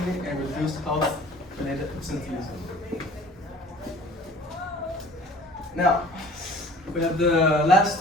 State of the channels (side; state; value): both; normal; correlation 0.48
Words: and reduced health-related absenteeism. Now, we have the